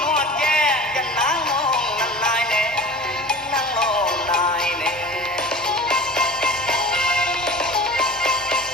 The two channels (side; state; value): both; normal; correlation 0.39